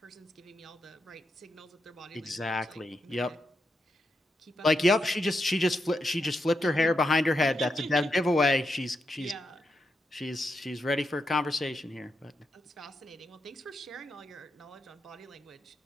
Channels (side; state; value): both; normal; correlation 0.84